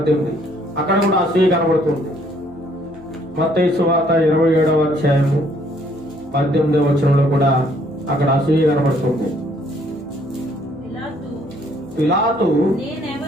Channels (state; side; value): normal; both; correlation 0.64